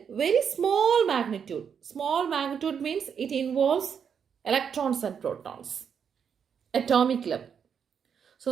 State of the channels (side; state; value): left; quieter; 7.3 dB